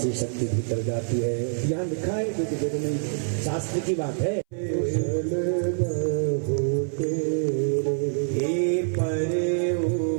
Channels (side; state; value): left; silent; 61 dB below the other